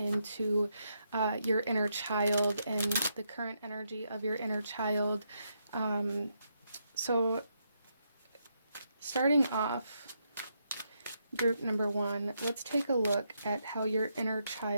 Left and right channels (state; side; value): inverted; both; correlation -0.79